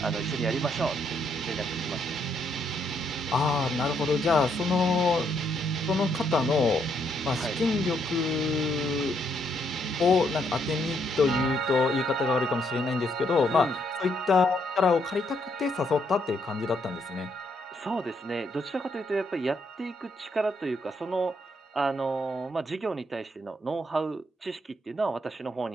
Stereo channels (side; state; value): both; normal; correlation 0.74